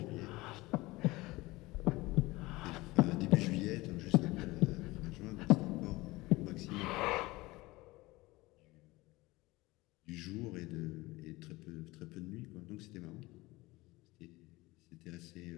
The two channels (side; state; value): right; quieter; 20.8 dB